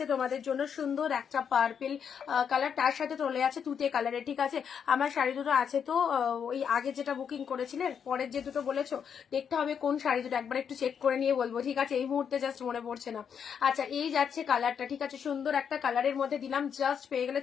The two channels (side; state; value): right; quieter; 7.4 dB